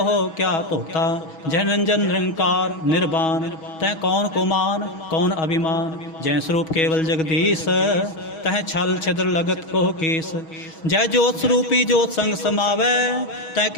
क्या धोता। जह निरंजन निरंकार निर्वाण तह कौन को मान कौन अभिमान। जय स्वरूप केवल जगदीश तह छल छिद्र लगत कोह कीस। जय ज्योत स्वरूपी ज्योत संग समावै तह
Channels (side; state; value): right; late; 6.2 ms